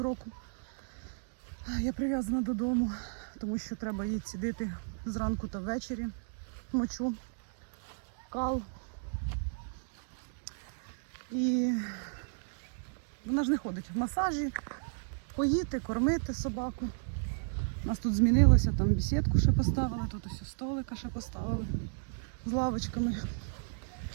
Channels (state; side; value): silent; left; digital silence